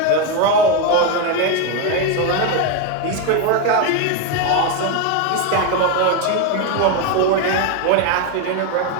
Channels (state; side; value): different; both; correlation 0.02